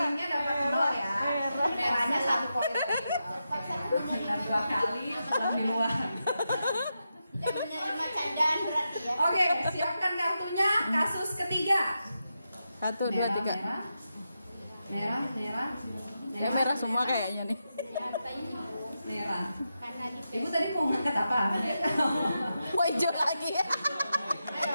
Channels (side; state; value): both; inverted; correlation -0.88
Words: dapat 0 ya. Merahnya 1 poin. Benar 2 kali pulang di luar. Jangan menerima candaan berarti ya. Oke, siapkan kartunya. Kasus ketiga. 1, 2, 3. Merah semua kayaknya nih. Merah. Ibu tadi mau ngangkat apa? Mau hijau lagi ya.